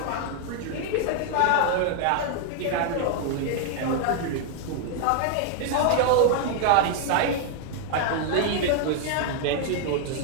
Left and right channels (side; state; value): both; different; correlation 0.00